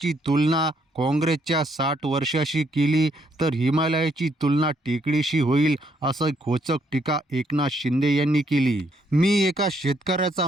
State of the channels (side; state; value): both; normal; correlation 0.72